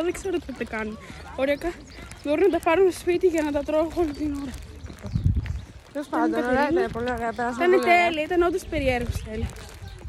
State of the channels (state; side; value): identical; both; correlation 1.00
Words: δεν ξέρω τι θα κάνουν. Ωριακά μπορούν να τα πάρουν στο σπίτι για να τα τρώω όλη την ώρα. Τέλος πάντων, ωραία, ήταν πολύ ωραία. Ήταν τέλεια, ήταν όντως περίεργος τέλεια.